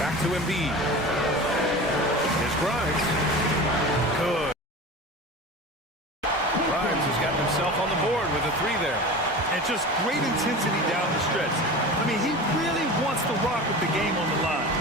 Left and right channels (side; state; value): both; normal; correlation 0.33